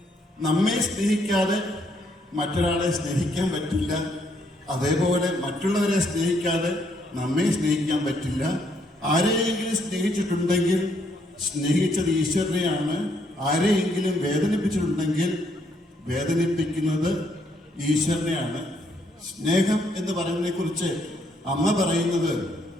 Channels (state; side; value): normal; both; correlation 0.71